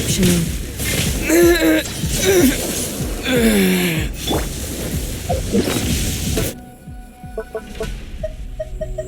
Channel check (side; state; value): both; identical; correlation 1.00